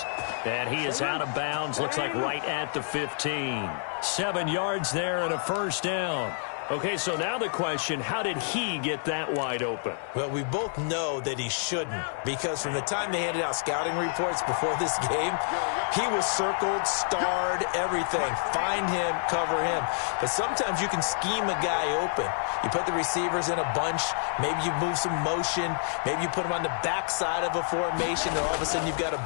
And he is out of bounds. Looks like right at the 15. 7 yards there and a first down. Okay, so now the question, how did he get that wide open? Well, we both know that he shouldn't, because from the time they handed out scouting reports before this game, he was circled, starred, everything. Find him, cover him. But sometimes you can scheme a guy open. You put the receivers in a bunch. Maybe you move some motion. Maybe you put them on the backside of a formation, and all of a sudden you've got a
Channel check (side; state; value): right; silent; 59 dB below the other